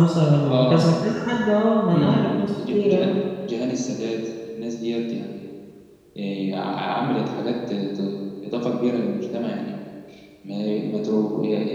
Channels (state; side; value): identical; both; correlation 1.00